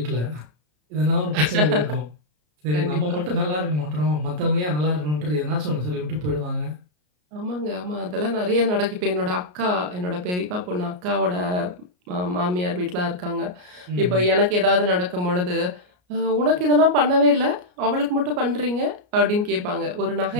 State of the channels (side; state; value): left; late; 33 ms